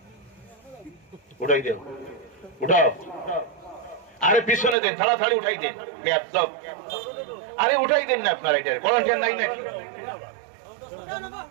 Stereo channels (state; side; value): drops out; left; at 4.8 s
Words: উঠাই দেন, উঠাও। আরে পিছনে দেন, তাড়াতাড়ি উঠাই দেন, বেয়াদব। আরে উঠাই দেন না আপনারা, এটা ভলান্টিয়ার নাই নাকি?